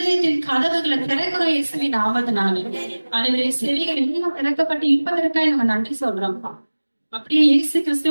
கதவுகளை திறக்கிறோம் இயேசுவின் நாமத்தினால. அதுவரை செவிகள் எல்லாம் திறக்கப்பட்டு இருப்பதற்காக நம்ம நன்றி சொல்றோம்ப்பா. அப்படியே இயேசு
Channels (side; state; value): both; inverted; correlation -1.00